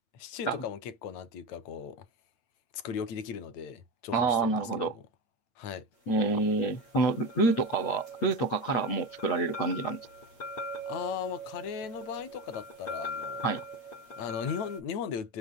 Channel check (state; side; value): late; right; 8.7 ms